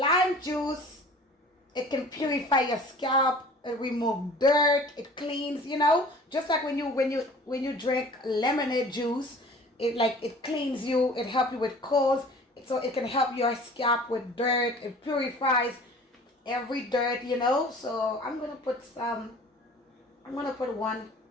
juice, it can purify your scalp, it remove dirt, it cleans, you know, just like when you drink lemonade juice, it cleans you, it helps you with colds, so it can help your scalp with dirt, it purifies every dirt, you know. So I'm gonna put 1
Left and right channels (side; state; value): both; normal; correlation 0.46